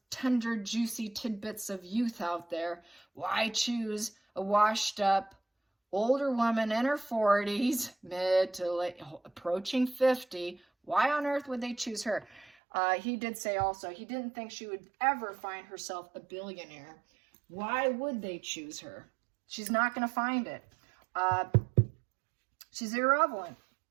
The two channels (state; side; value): drops out; left; at 12.5 s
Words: tender, juicy tidbits of youth out there? Why choose a washed up older woman in her 40s, mid to late, approaching 50? Why on earth would they choose her? He did say also he didn't think she would ever find herself a billionaire. Why would they choose her? She's not going to find it. She's irrelevant.